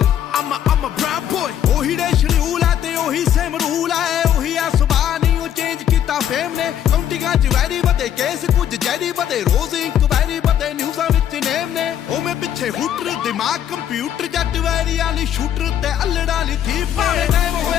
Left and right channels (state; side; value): quieter; right; 10.1 dB